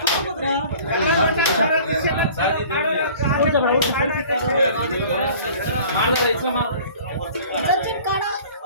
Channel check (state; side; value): inverted; both; correlation -0.47